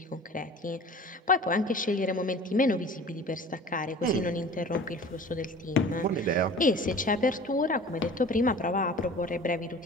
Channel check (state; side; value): normal; both; correlation 0.42